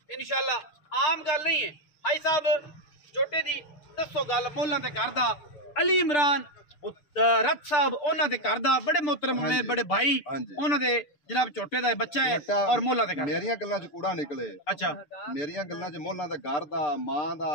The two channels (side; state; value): right; late; 6.8 ms